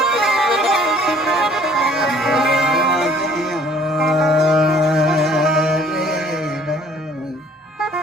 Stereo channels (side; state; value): both; normal; correlation 0.57